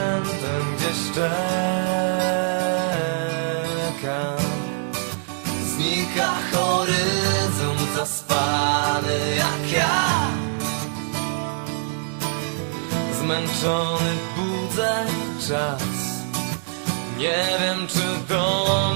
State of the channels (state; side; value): silent; left; digital silence